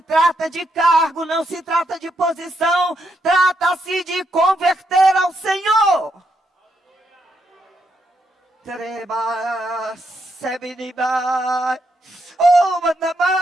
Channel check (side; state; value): both; normal; correlation 0.79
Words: trata de cargo, não se trata de posição. Trata-se de converter ao Senhor.